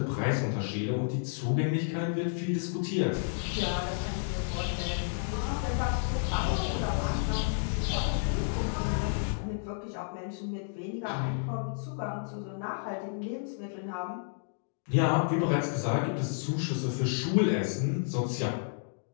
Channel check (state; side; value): silent; right; digital silence